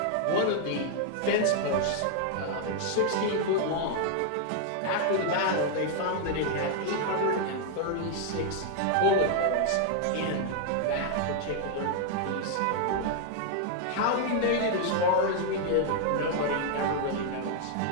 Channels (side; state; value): both; different; correlation 0.00